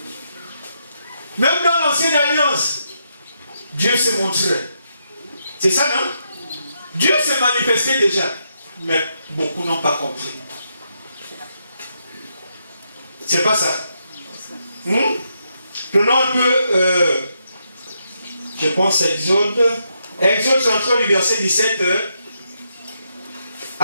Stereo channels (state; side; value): inverted; both; correlation -0.80